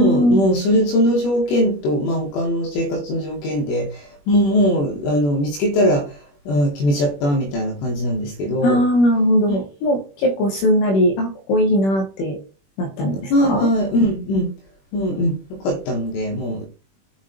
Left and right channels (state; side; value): late; right; 21 ms